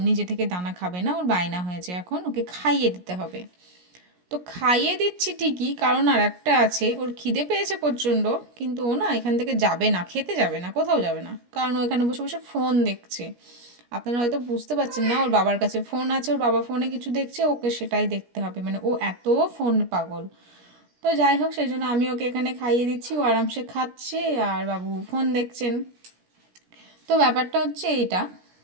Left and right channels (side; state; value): left; late; 17 ms